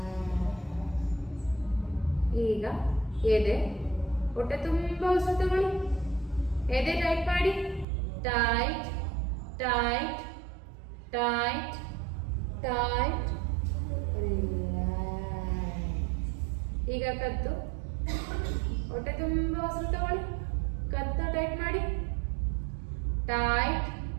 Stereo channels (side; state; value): left; drops out; at 7.9 s